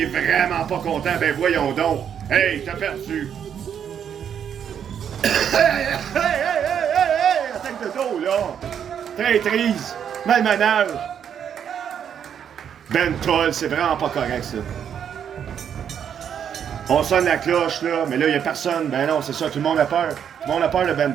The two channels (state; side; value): quieter; left; 8.4 dB